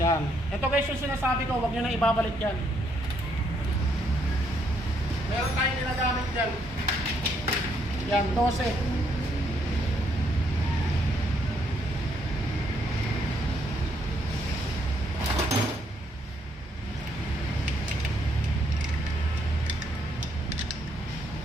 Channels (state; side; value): normal; both; correlation 0.73